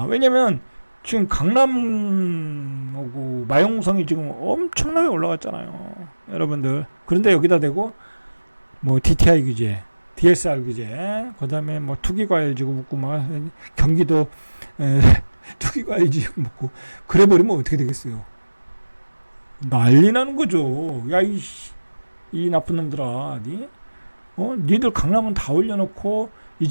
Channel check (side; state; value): both; inverted; correlation -1.00